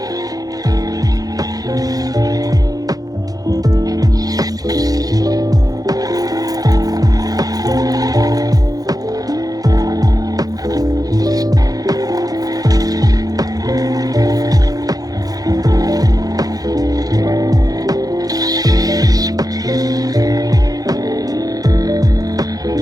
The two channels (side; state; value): left; late; 0.18 ms